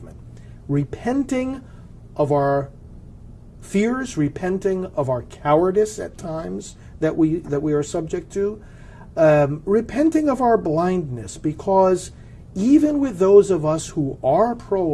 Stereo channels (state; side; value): identical; both; correlation 1.00